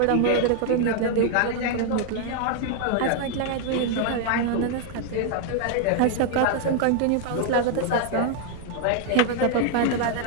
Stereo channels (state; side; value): different; both; correlation 0.00